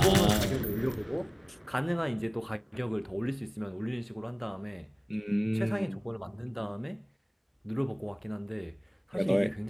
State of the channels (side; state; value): both; identical; correlation 1.00